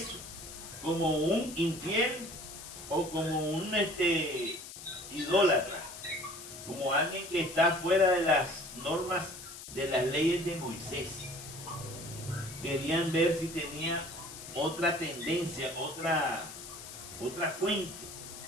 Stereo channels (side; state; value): left; noise; hiss, 13 dB below the sound